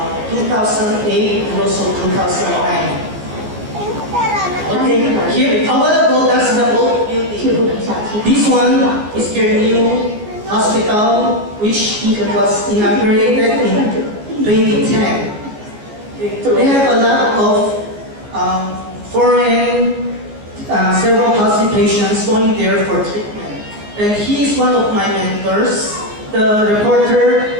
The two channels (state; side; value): late; left; 14 ms